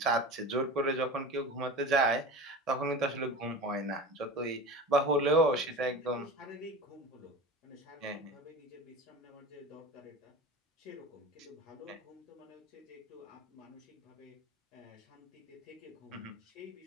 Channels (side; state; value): both; normal; correlation 0.32